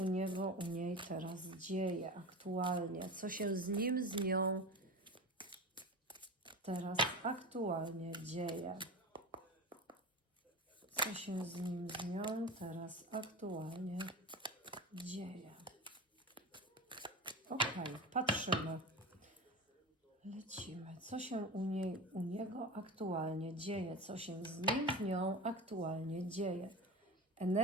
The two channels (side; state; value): both; normal; correlation 0.28